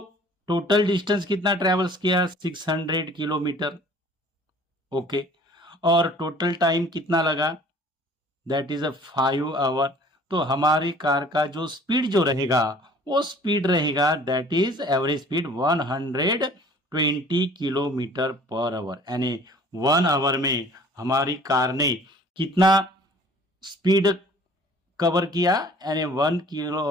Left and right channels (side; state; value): both; normal; correlation 0.51